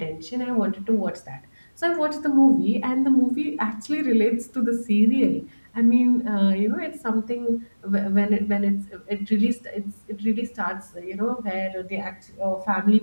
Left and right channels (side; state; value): both; inverted; correlation -1.00